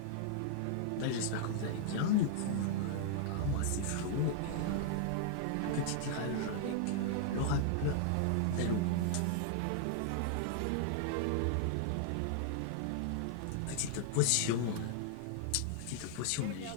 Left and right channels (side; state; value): both; different; correlation 0.00